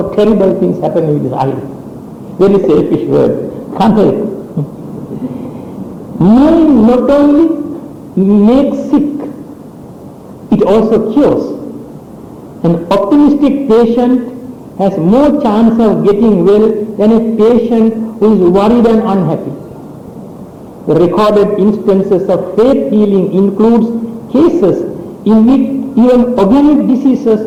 terrible things happen with this I. Very selfish word. Can't help. Mind not only makes sick, it also cures. An optimistic patient has more chance of getting well than a patient who is worried and unhappy. The recorded instances of faith healing includes cases in which even organic diseases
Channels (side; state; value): both; identical; correlation 1.00